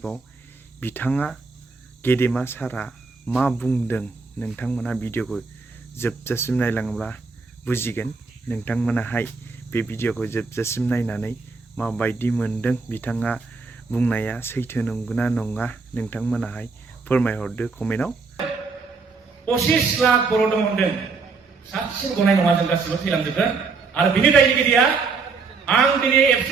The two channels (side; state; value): left; quieter; 4.5 dB